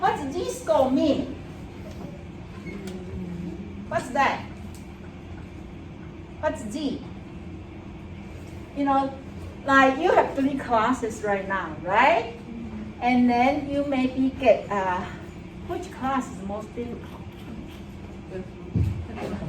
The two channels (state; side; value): identical; both; correlation 1.00